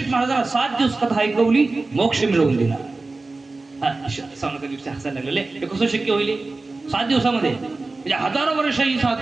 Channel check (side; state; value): left; quieter; 3.5 dB